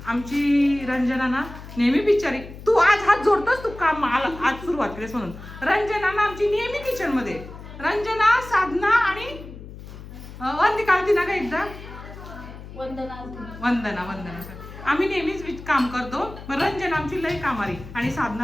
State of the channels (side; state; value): left; noise; hum, 14 dB below the sound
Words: आमची रंजना ना नेहमी बिचारी. तू आज हात जोडतोस तू काम मला आज सुरुवात केलीस म्हणून. रंजना ना आमची नेहमी किचन मध्ये. रंजना, साधना आणि वंदिका आलती ना का एकदा. वंदना आम्ही नेहमीच काम करतो. रंजना आमची लय कामारी आणि